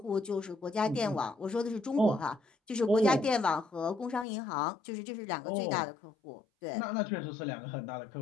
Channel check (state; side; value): drops out; right; at 4.2 s